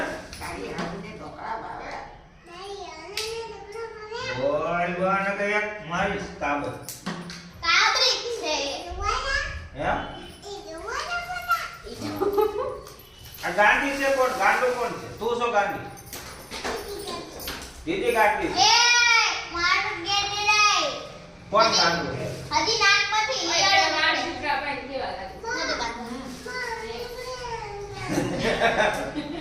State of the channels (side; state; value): both; identical; correlation 1.00